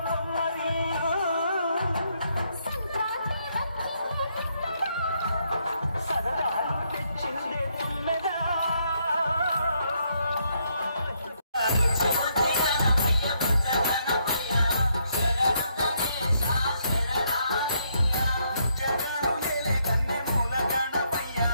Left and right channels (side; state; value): both; inverted; correlation -0.74